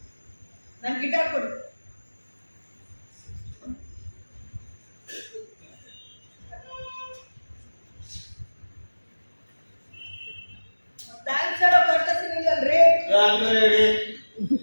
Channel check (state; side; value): inverted; both; correlation -1.00